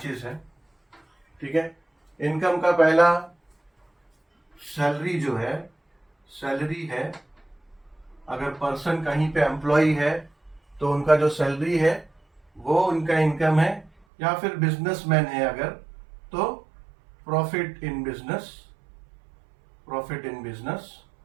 हैं। ठीक है, इनकम का पहला सैलरी जो है, सैलरी है। अगर पर्सन कहीं पे एम्प्लॉय है तो उनका जो सैलरी है वो उनका इनकम है, या फिर बिजनेसमैन है अगर तो प्रॉफिट इन बिजनेस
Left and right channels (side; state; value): left; drops out; at 13.9 s